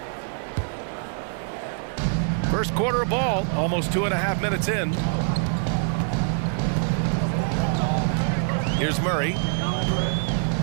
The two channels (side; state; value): left; silent; digital silence